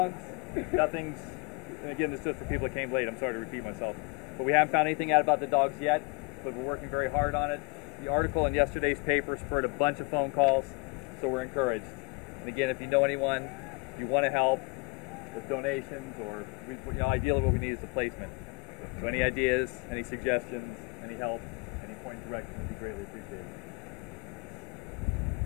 nothing's, and again, this is just for people that came late. I'm sorry to repeat myself. But we haven't found anything out about the dogs yet, but we're working very hard on it. The article in yesterday's paper spurred a bunch of phone calls, so we're encouraged. And again, if you know anyone, if you want to help with donations or, ideally what we need is the placement. So any ideas, any suggestions, any help, any point of direction would be greatly appreciated.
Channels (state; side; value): quieter; right; 28.5 dB